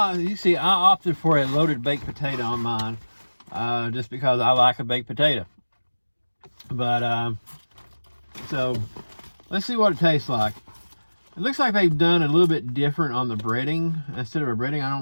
you see, I opted for a loaded baked potato on mine, just because I like a baked potato. But so let's see what it tastes like. It looks like they've done a little bit different on the breading. Instead of a breading, I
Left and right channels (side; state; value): both; inverted; correlation -1.00